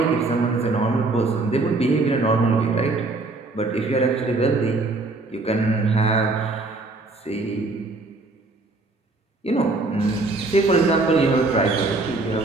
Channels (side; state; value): left; quieter; 3.3 dB